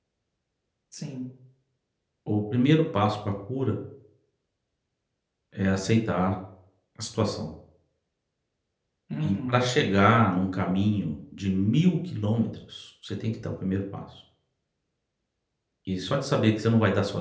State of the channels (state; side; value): identical; both; correlation 1.00